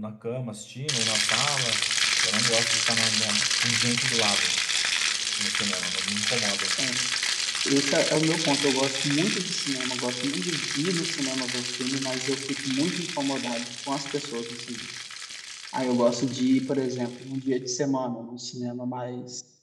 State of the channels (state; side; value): identical; both; correlation 1.00